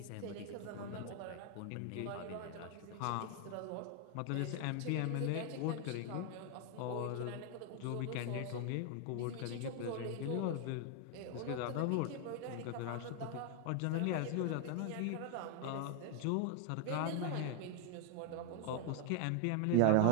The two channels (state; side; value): different; both; correlation 0.00